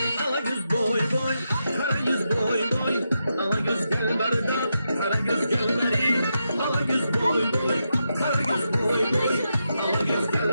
Ala göz boy boy, kara göz boy boy Ala göz gel barda, kara göz gel bari Ala göz boy boy, kara göz boy boy Ala göz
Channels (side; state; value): both; inverted; correlation -0.85